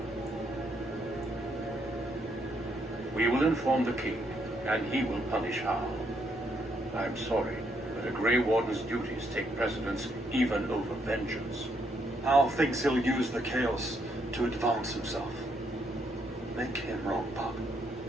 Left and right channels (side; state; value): both; normal; correlation 0.74